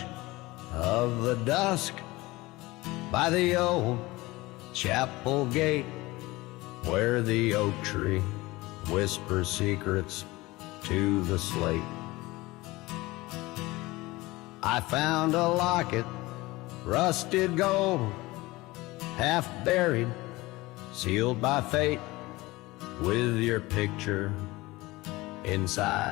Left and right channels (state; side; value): quieter; right; 20.6 dB